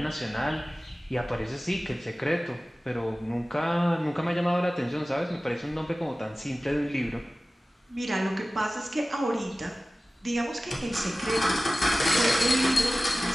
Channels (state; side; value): normal; both; correlation 0.97